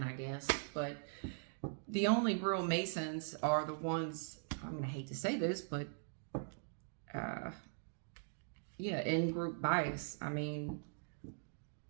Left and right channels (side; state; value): left; silent; digital silence